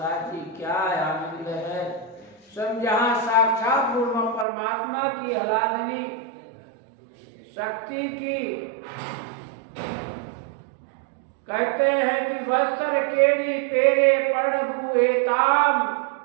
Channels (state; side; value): drops out; left; at 4.5 s